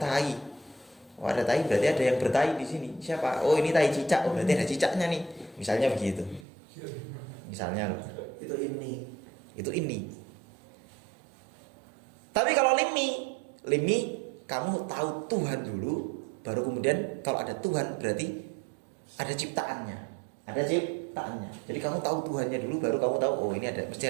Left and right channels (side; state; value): left; drops out; at 6.5 s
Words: Berarti ada yang bertai di sini. Siapa? Oh, ini tai cicak. Oh, berarti ada cicaknya nih. Misalnya begitu. Misalnya Itu ini. Tapi kalau limi kamu tahu Tuhan dulu, baru kemudian kalau ada Tuhan berarti ada ciptaannya. Jadi kamu tahu Tuhannya dulu, baru kamu tahu, oh ini mesti